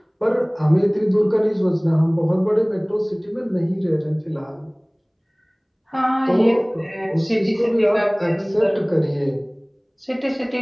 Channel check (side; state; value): both; identical; correlation 1.00